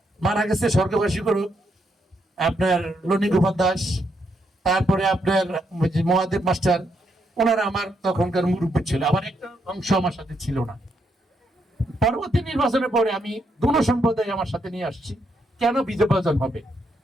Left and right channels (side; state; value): both; normal; correlation 0.78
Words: মারা গেছে স্বর্গবাসী করুক, আপনার লনি গোপাল দাস, তারপরে আপনার মহাদেব মাস্টার, ওনারা আমার তখনকার মুরব্বী ছিল, আবার একটা অংশ আমার সাথে ছিল না। পরবর্তী নির্বাচনের পরে আমি দুটো সম্প্রদায় আমার সাথে নিয়ে আসছি। কেন বিভাজন হবে?